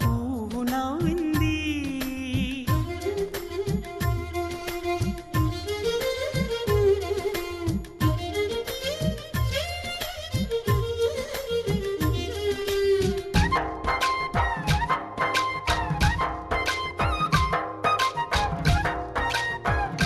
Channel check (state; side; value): identical; both; correlation 1.00